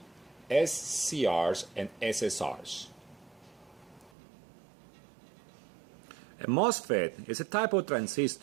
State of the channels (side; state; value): left; drops out; at 4.1 s